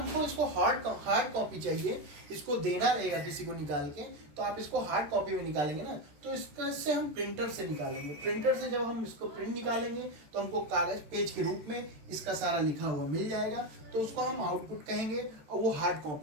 इसको हार्ड कॉपी चाहिए, इसको देना रहेगा किसी को निकाल के, तो आप इसको हार्ड कॉपी में निकालेंगे ना, तो इससे हम प्रिंटर से निकालेंगे। प्रिंटर से जब हम इसको प्रिंट निकालेंगे तो हमको कागज पेज के रूप में इसका सारा लिखा हुआ मिल जाएगा, तो उसको हम आउटपुट कहेंगे और वो हार्ड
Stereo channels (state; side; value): late; left; 13 ms